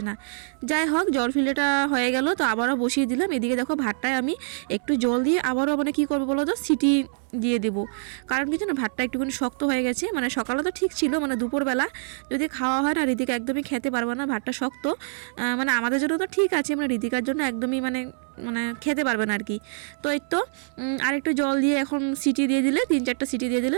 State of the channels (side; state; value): left; silent; 59 dB below the other